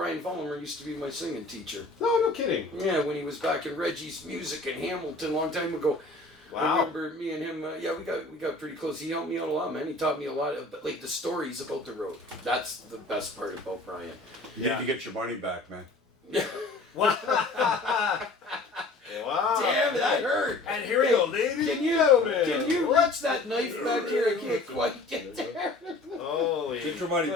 Vollmer used to be my singing teacher. No kidding. Yeah, when he was back in Reggie's Music in Hamilton a long time ago. Wow. I remember me and him. We got pretty close. He helped me out a lot, man. He taught me a lot of like the stories about the road. That's the best part about Brian. You need to get your money back, man. Wow. Damn, that hurt. And here we go, ladies. Can you reach that knife back here? I can't quite get there. Holy. Get your money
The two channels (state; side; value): quieter; right; 3.1 dB